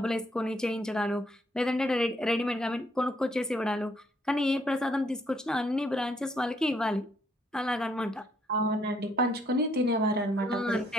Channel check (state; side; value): normal; both; correlation 0.69